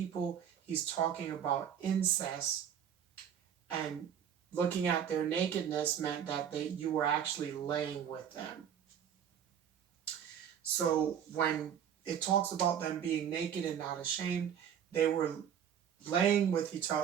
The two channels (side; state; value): left; quieter; 8.9 dB